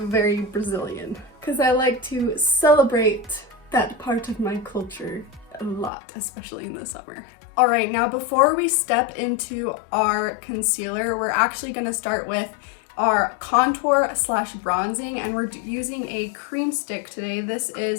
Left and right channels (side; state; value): right; drops out; at 5.9 s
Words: Brazilian, because I like to celebrate that part of my culture a lot, especially in the summer. All right, now before we step into our concealer, we're actually going to start with our contour slash bronzing, and we're using a cream stick today. This